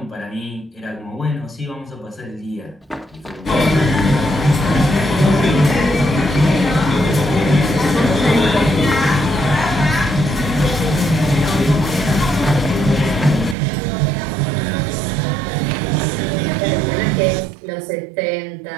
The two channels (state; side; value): drops out; left; at 13.6 s